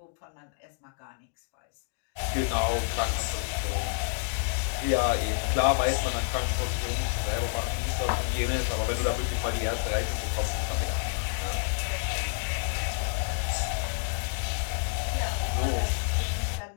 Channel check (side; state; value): right; silent; digital silence